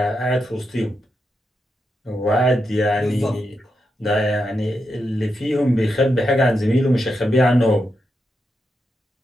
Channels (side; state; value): both; normal; correlation 0.85